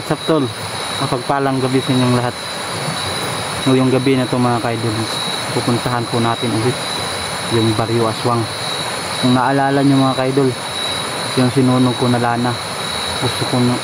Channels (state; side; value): identical; both; correlation 1.00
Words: up tol? Mapagpalang gabi sa inyong lahat. Ngayong gabi na ito mga kaidol, pupuntahan po natin ulit yung Barrio Aswang. Kung naalala nyo mga kaidol, yung sinunog ko na lana, gusto